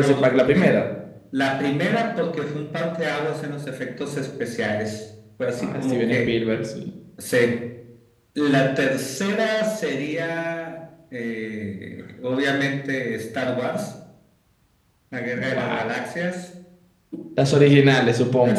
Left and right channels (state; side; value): identical; both; correlation 1.00